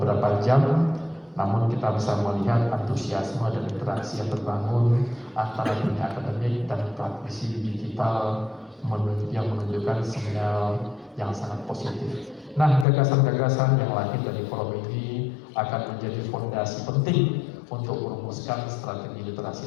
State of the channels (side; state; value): right; drops out; at 12.9 s